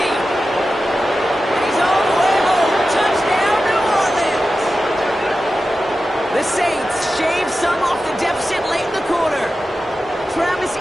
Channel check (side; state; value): both; normal; correlation 0.92